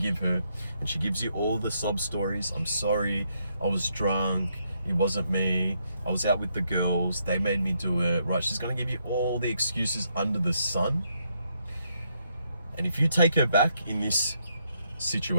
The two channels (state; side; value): inverted; both; correlation -0.76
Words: her and she gives you all the sob stories. I'm sorry, I was drunk, it wasn't me, I was out with the girls, they made me do it, right? She's gonna give you all the excuses under the sun. And if you take her back in this